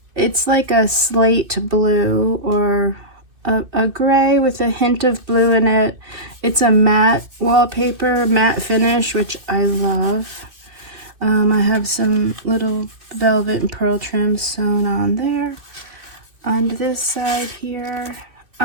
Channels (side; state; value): left; late; 2.6 ms